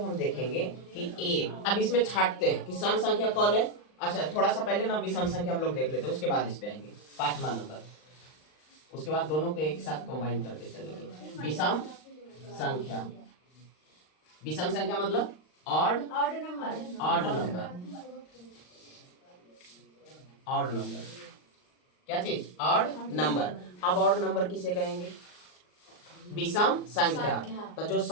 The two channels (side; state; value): right; late; 39 ms